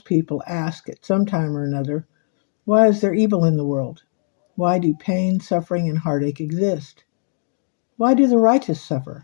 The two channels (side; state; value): right; silent; 58 dB below the other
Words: people ask at some time or another. Why is there evil in the world? Why do pain, suffering, and heartache exist? Why do the righteous